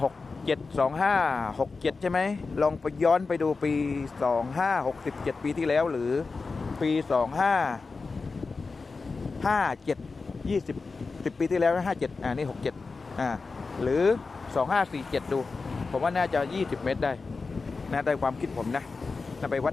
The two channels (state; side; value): quieter; right; 4.2 dB